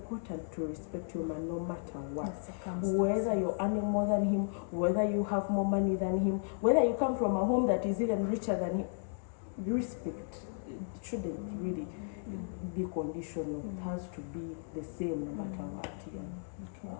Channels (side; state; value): right; silent; digital silence